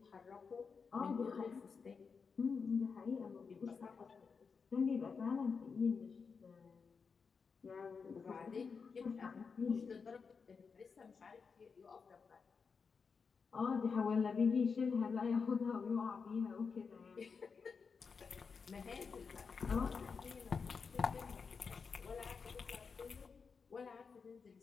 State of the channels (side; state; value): right; quieter; 5.4 dB